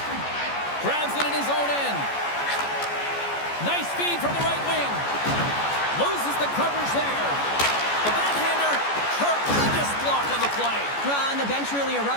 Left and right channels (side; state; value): right; late; 14 ms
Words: Grabs it in his own end. Nice feed from the right wing. Loses the coverage there. The backhander, tremendous block on the play. Well, and the bench really